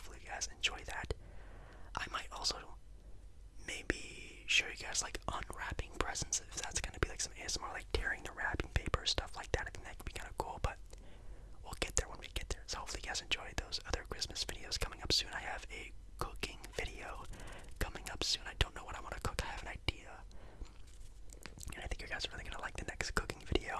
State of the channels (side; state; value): both; identical; correlation 1.00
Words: you guys enjoy that. I might also maybe show you guys like unwrapping presents, if that's going to be like some ASMR, like tearing the wrapping paper, stuff like that. I think that could be kind of cool, but we'll get there when we get there. So hopefully you guys enjoy those other Christmas videos coming up soon. I have a cooking video coming up soon. I don't know what I want to cook. I have an idea, and I think you guys are really going to like the next cooking video.